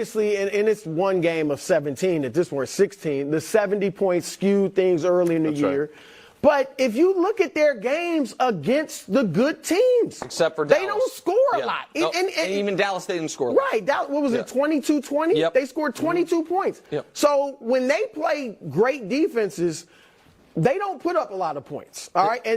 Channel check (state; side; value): identical; both; correlation 1.00